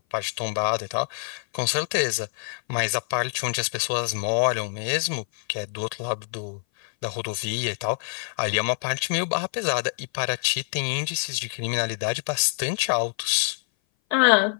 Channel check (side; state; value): right; silent; 57 dB below the other